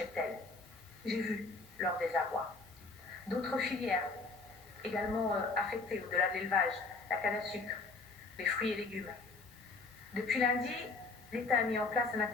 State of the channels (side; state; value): right; quieter; 3.9 dB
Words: J'ai vu leur désarroi. D'autres filières, également affectées au-delà de l'élevage, la canne à sucre, les fruits et légumes. Depuis lundi, l'État a mis en place un